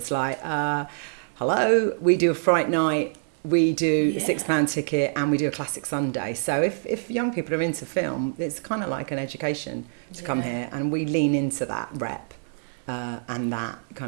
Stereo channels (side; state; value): left; silent; digital silence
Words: like, hello, we do a Fright Night, we do Yeah. £6 ticket, and we do a Classic Sunday. So if young people are into film, it's kind of like an education to come Yeah. here, and we lean into that rep and that